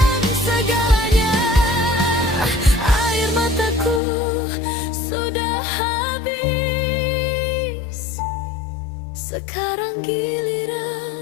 segalanya. Air mataku sudah habis, sekarang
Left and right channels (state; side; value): drops out; right; at 4.0 s